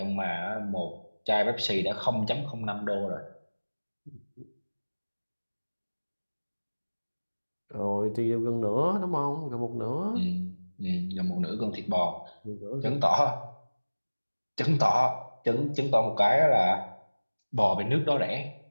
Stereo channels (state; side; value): inverted; both; correlation -1.00